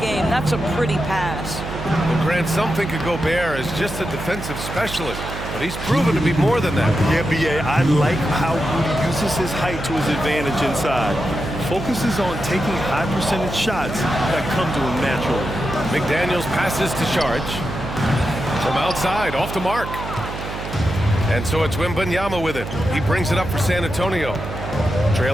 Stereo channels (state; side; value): noise; right; hum, 8 dB below the sound